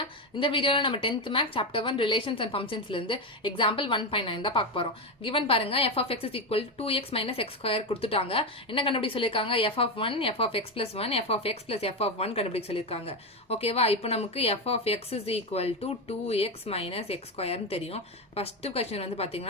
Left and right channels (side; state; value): both; normal; correlation 0.13